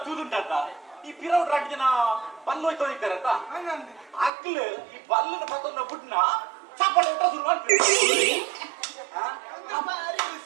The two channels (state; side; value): drops out; left; at 4.3 s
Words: ತೂದುಂಡತ್ತ ಈ ಪಿರೌಡ್ ರಾಜ್ಯನ ಬಲ್ಲು ಹೋಯ್ತು ಇದ್ದಾರತ್ತ ಅಕ್ಲು ಈ ಬಲ್ಲನ ಪತ್ತೊಂದ ಬುಡ್ನ ಚಪ್ಪಳೆ ಊಟ ಶುರು ಮಾಡ್ತೀವಿ ಭಾರಿ